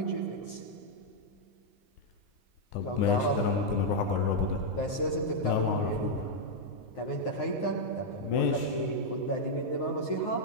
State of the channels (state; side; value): late; right; 9.6 ms